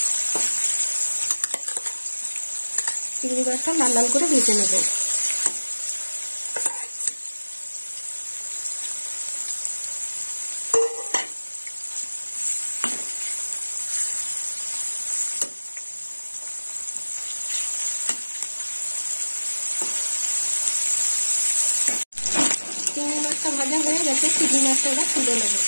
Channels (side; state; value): both; inverted; correlation -1.00